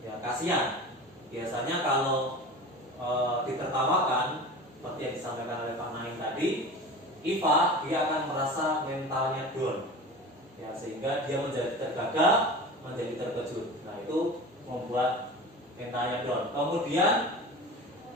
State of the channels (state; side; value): normal; both; correlation 0.34